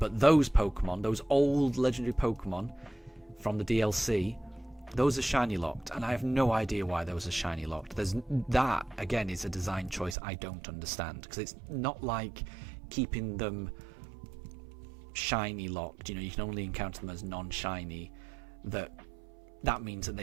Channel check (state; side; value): drops out; left; at 10.2 s